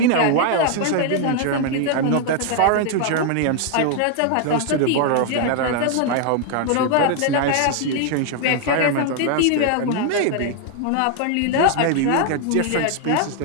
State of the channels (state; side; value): different; both; correlation 0.00